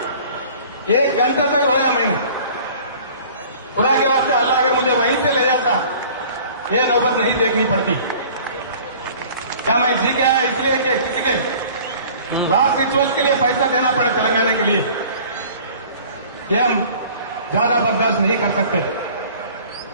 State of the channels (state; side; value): inverted; both; correlation -0.48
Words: 1 घंटा तक रोया मैंने, खुदा के वास्ते अल्लाह अगर मुझे वहीं से ले जाता, ये नौबत नहीं देखनी पड़ती। क्या मैं जी के आया इसलिए कि किसी के लास्ट रिचुअल्स के लिए पैसा देना पड़े तेलंगाना के लिए? ये हम ज्यादा बर्दाश्त नहीं कर सकते।